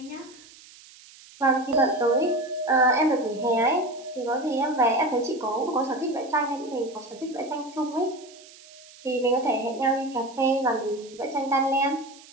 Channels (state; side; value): noise; right; hiss, 22 dB below the sound